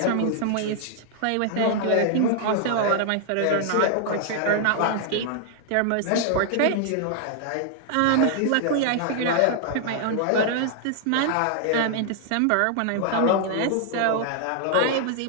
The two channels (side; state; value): both; different; correlation -0.01